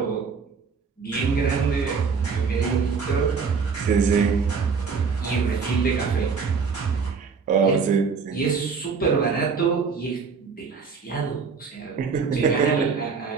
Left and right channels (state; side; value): quieter; left; 5.4 dB